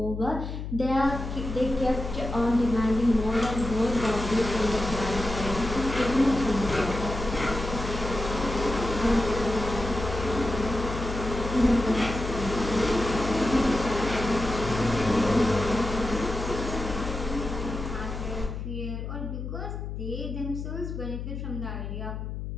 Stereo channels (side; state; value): left; noise; hum, 6 dB below the sound